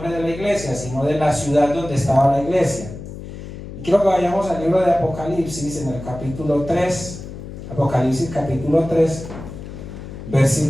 de la iglesia, sino de la ciudad donde estaba la iglesia. Y quiero que vayamos al libro de Apocalipsis, en el capítulo 3, Apocalipsis capítulo 3,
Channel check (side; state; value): left; noise; hum, 11 dB below the sound